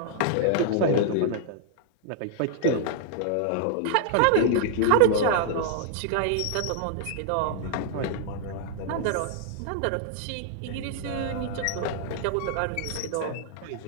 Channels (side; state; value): both; different; correlation -0.01